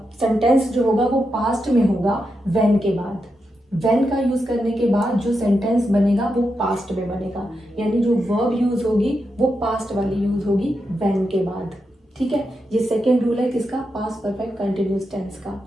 सेंटेंस जो होगा वो पास्ट में होगा व्हेन के बाद। व्हेन का यूज करने के बाद जो सेंटेंस बनेगा वो पास्ट में बनेगा, यानी जो वर्ब यूज होगी वो पास्ट वाली यूज होगी व्हेन के बाद। ठीक है, ये सेकेंड रूल है किसका, पास्ट परफेक्ट कंटिन्यूस टेंस का।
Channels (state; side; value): normal; both; correlation 0.86